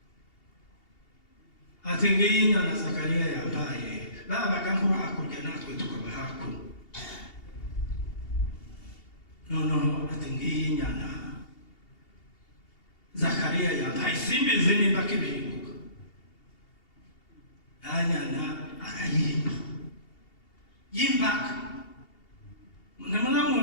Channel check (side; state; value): right; late; 2.8 ms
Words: Ati ngiyi inyana Zakariya yambaye, babaga nko hakurya natwe tukaba hakuno. Noneho ati ngiyi inyana Zakariya yambaye, simbizi nimba kibyibuka. Anyana arayimba, yimbaga. Muna